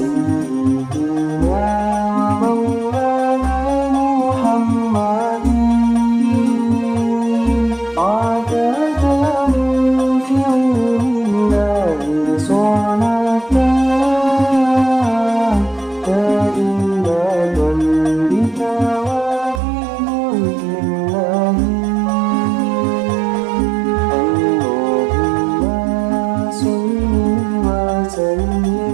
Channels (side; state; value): left; drops out; at 19.6 s